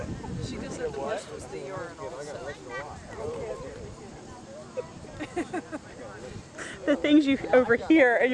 She just said the bush was the urinal. The things you overhear, and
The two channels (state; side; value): identical; both; correlation 1.00